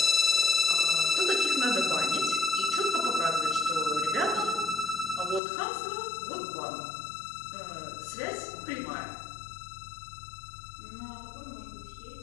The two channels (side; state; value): right; drops out; at 5.4 s